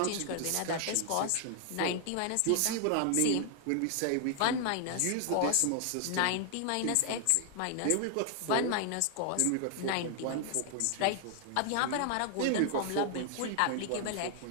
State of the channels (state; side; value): different; both; correlation 0.00